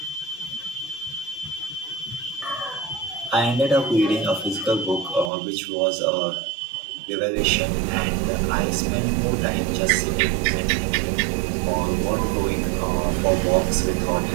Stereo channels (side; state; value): left; drops out; at 5.3 s